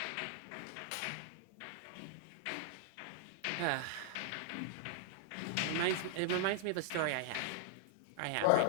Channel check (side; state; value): both; different; correlation -0.01